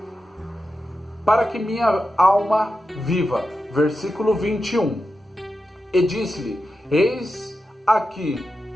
Para que minha alma viva. Versículo 21. E disse-lhe: eis aqui,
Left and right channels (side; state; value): both; normal; correlation 0.90